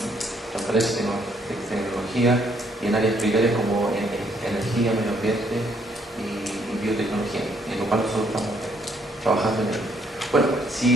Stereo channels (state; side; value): normal; both; correlation 0.68